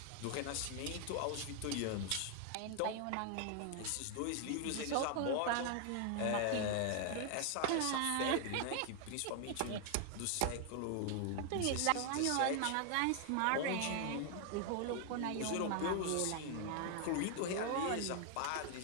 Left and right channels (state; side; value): different; both; correlation 0.00